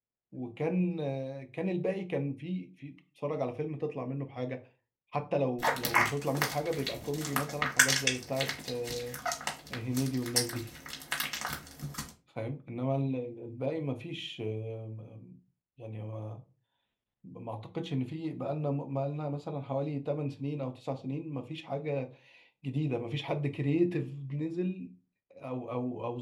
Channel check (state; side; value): identical; both; correlation 1.00